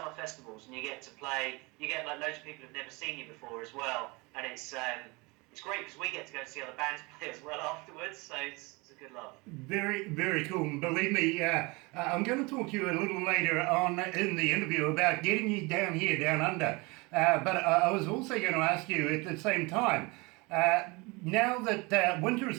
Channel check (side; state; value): left; quieter; 26.1 dB